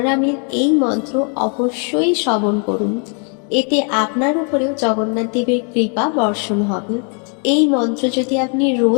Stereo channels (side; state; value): right; quieter; 39.9 dB